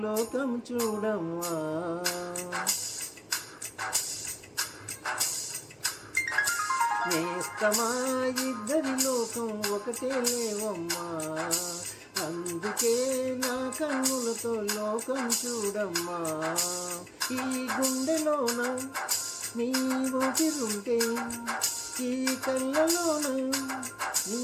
లోకం చూడమ్మా. నేస్తమా ఇద్దరి లోకం ఒకటే లేవమ్మా, అందుకే నా కన్నులతో లోకం చూడమ్మా. ఈ గుండెలోన నీ ఊపిరుంటే, ఈ కళ్ళలోన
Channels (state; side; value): identical; both; correlation 1.00